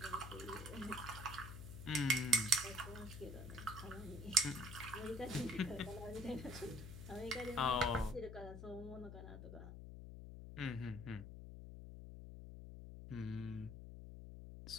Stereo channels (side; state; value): left; noise; hum, 10 dB below the sound